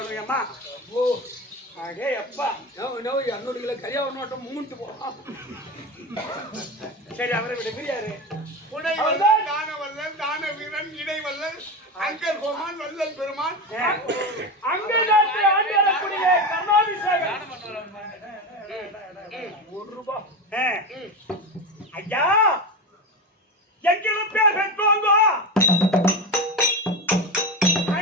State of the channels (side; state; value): both; normal; correlation 0.20